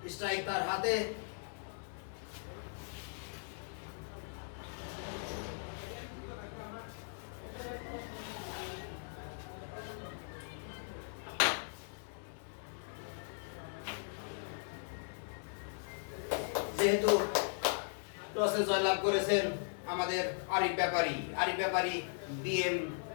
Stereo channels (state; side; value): silent; right; 52 dB below the other